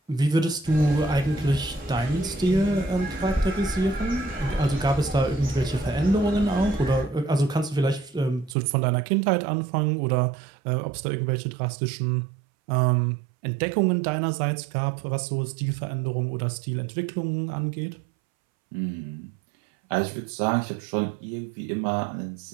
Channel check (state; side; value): drops out; left; at 8.6 s